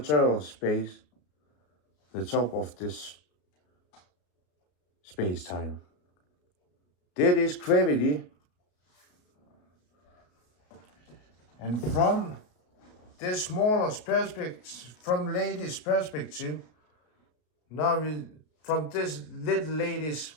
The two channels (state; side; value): late; right; 33 ms